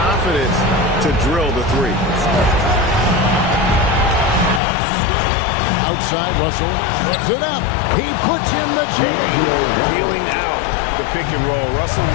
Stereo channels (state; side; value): drops out; right; at 4.6 s